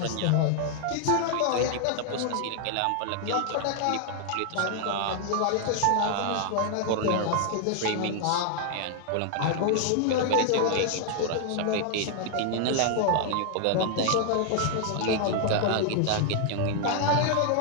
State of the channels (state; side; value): different; both; correlation 0.00